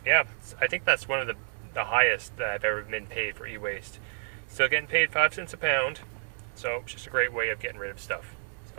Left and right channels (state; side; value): silent; left; digital silence